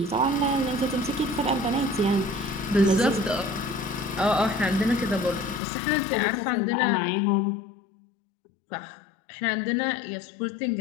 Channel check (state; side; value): drops out; right; at 5.6 s